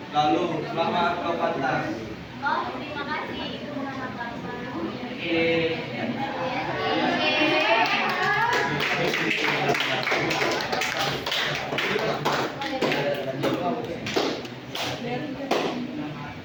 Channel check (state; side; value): identical; both; correlation 1.00